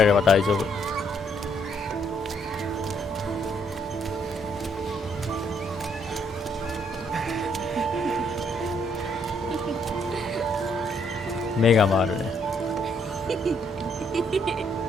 れれば大丈夫。目が回るね。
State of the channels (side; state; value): both; normal; correlation 0.70